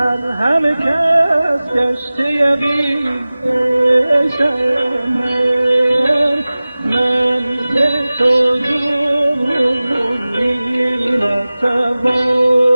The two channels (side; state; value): both; inverted; correlation -0.98